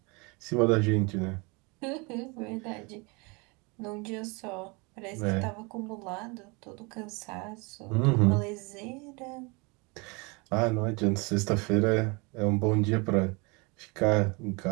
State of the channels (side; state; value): left; quieter; 28.9 dB